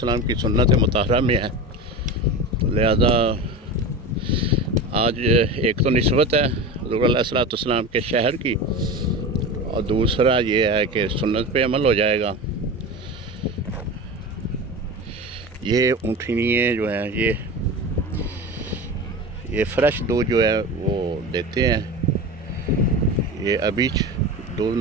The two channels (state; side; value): normal; both; correlation 0.28